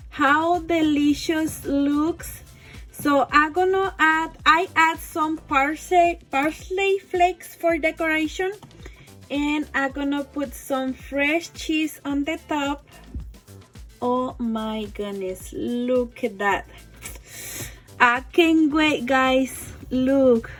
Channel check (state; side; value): identical; both; correlation 1.00